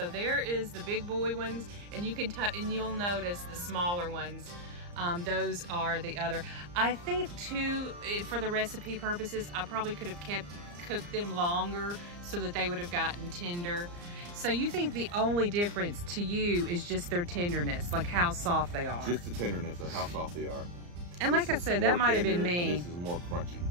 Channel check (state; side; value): late; left; 34 ms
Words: there is the big boy ones, and you can and you'll notice the smaller ones. Those are the other. I think too, for the recipe purposes, I probably could have cooked them longer so that they would have gotten tender. So you think the only difference to you is just their tenderness, like how soft they are? Just the tenderness of how soft they are. And like I said, that might have been me. This is more crunchy.